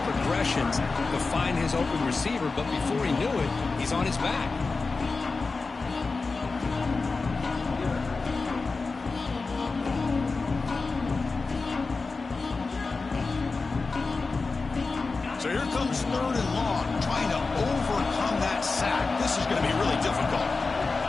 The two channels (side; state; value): right; quieter; 4.0 dB